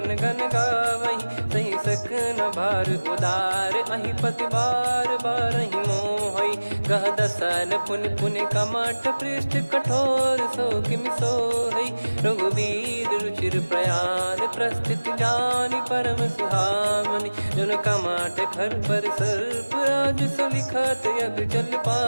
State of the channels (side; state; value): both; inverted; correlation -1.00